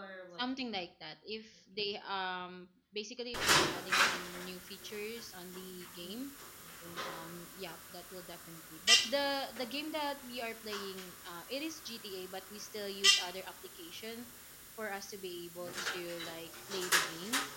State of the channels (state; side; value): identical; both; correlation 1.00